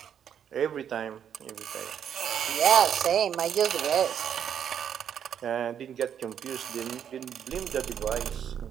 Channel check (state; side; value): quieter; left; 8.8 dB